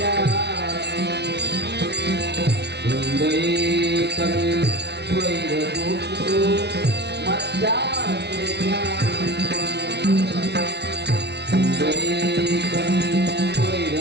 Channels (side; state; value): left; late; 0.49 ms